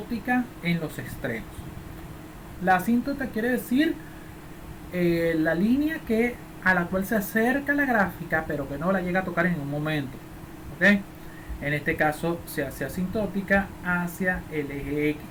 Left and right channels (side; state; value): both; identical; correlation 1.00